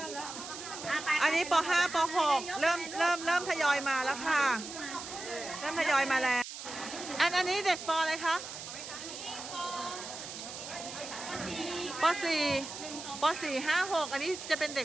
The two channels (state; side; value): noise; right; hiss, 10 dB below the sound